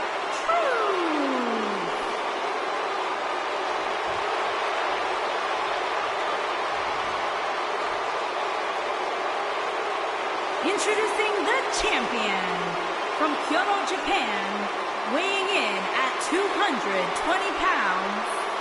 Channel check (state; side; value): identical; both; correlation 1.00